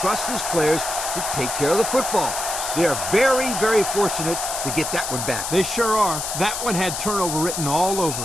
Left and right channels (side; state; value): left; noise; hiss, 4 dB below the sound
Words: his players to take care of the football. They are very, very fortunate to get that one back. They sure are. That one had turnover written all over